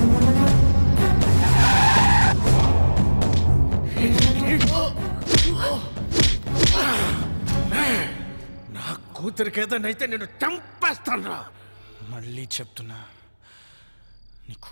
కూతురికి ఏదైతే నేను చంపేస్తాను. మళ్ళీ చెప్తున్నా, నీ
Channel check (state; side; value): inverted; both; correlation -1.00